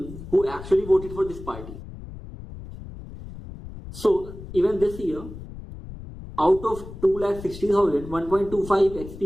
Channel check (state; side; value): noise; left; rumble, 13 dB below the sound